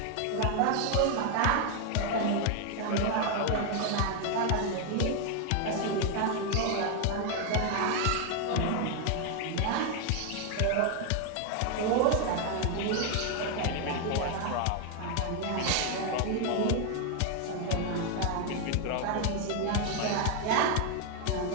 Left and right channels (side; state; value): both; different; correlation 0.01